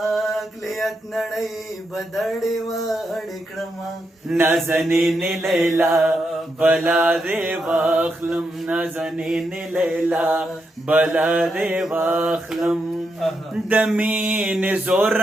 اقلیت نړۍ بدړې وړې کړم نازنین لیلا بلا دی واخلم نازنین لیلا بلا دی واخلم د مینې زور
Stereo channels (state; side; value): normal; both; correlation 0.83